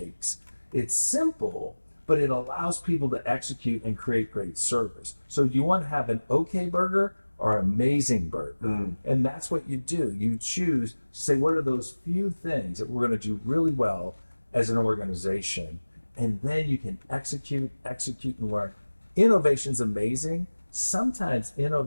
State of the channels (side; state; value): both; inverted; correlation -1.00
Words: It's simple, but it allows people to execute and create great service. So do you want to have an okay burger or amazing burger? And that's what you do. You choose, say, what are those few things that we're going to do really well as an organization? And then you can execute, and learn. Innovation's amazing. Sometimes